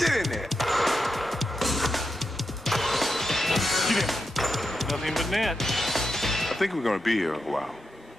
in there. Get in. Nothing but net. I think we're gonna be here a while.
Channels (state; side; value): normal; both; correlation 0.87